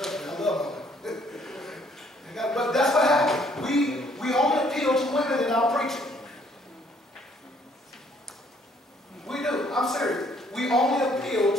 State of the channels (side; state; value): both; normal; correlation 0.64